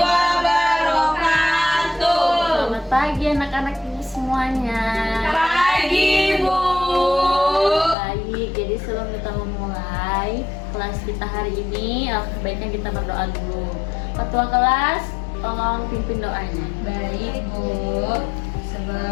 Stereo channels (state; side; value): drops out; right; at 8.0 s